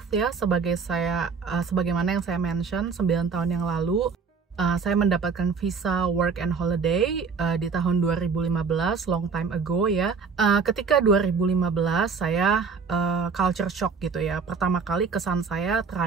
ya, sebagaimana yang saya mention 9 tahun yang lalu. Saya mendapatkan visa work and holiday di tahun 2015, long time ago ya. Ketika 2015 saya culture shock gitu ya. Pertama kali kesan saya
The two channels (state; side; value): quieter; left; 5.5 dB